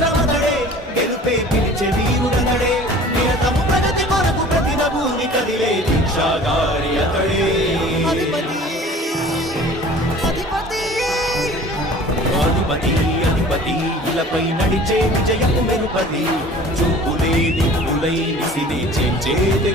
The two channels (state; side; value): normal; both; correlation 0.46